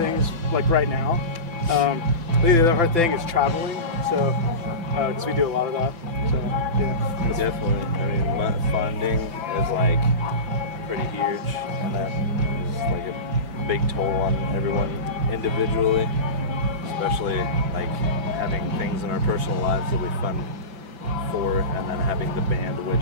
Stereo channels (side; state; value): left; late; 5.9 ms